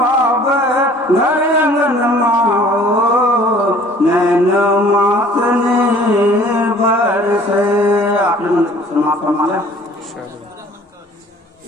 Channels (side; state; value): both; normal; correlation 0.52